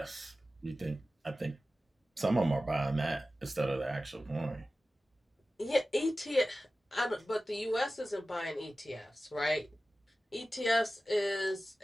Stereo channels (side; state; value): both; normal; correlation 0.95